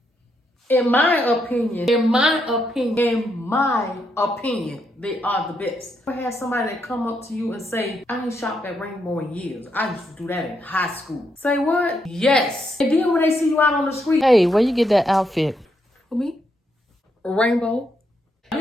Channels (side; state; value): both; normal; correlation 0.79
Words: In my opinion, they are the best. I had somebody that come up to you and say, I ain't shopped at Rainbow in years. I used to do that in high school. Say what? Yes. And then when they see you out on the street, hey, where you get that outfit? For me? Rainbow. Y'all